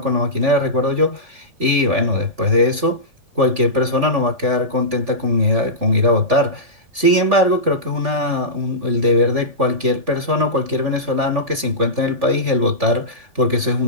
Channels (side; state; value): left; late; 3.4 ms